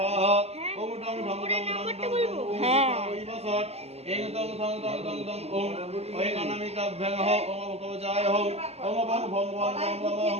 ওং ডং ডং ডং ডং ডং হ্যাঁ ওই বসৎ ইং তং থং দং দং দং ওং ওং অনামিকাভ্যং হো ওং কবচায় হো ওং বং ভং ভং ভং ভং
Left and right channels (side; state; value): left; late; 0.30 ms